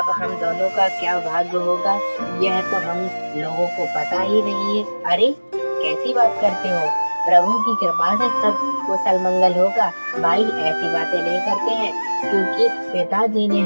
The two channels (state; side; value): inverted; both; correlation -1.00